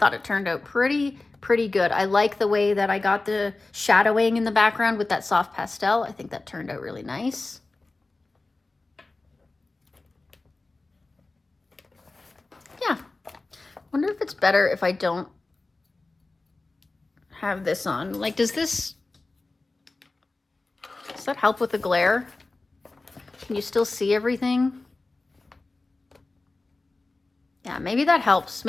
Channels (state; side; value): quieter; right; 3.3 dB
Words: it turned out pretty good. I like the way that I got the shadowing in the background with that soft pastel. I think that turned out really nice. Yeah. Wonder if it's better if I don't have this on. Like, does that help with the glare? Can you still see everything? Yeah, maybe that helps.